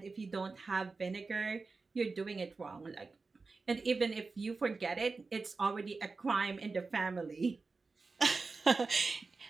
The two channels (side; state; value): left; quieter; 4.1 dB